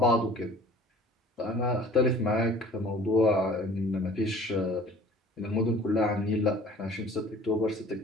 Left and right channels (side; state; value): both; normal; correlation 0.48